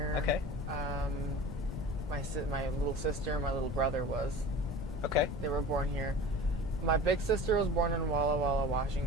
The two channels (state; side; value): noise; left; rumble, 7 dB below the sound